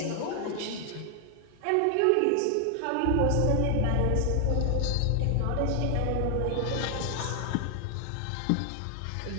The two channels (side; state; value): both; different; correlation 0.00